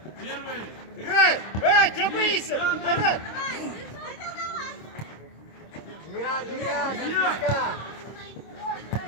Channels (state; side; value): late; right; 26 ms